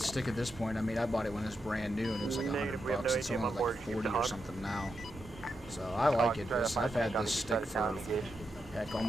stick at this point. I mean, I bought it when it was brand new and it was like Negative, we have $100. no It's ATM only on board. like Keep 40 the or hog. something now. So I like it. I've had this stick for heck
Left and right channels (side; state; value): both; normal; correlation 0.85